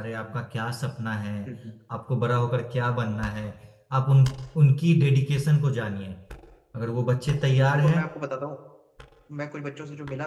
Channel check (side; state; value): both; identical; correlation 1.00